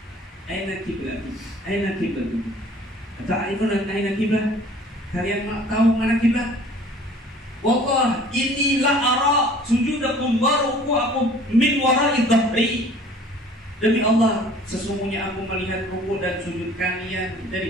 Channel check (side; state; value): both; normal; correlation 0.50